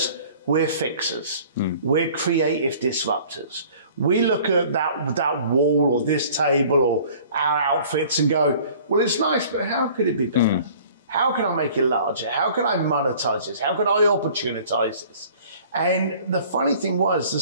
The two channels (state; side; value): inverted; both; correlation -0.50